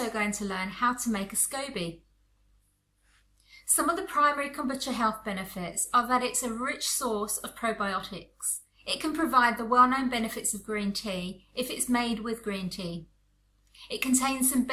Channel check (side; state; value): both; identical; correlation 1.00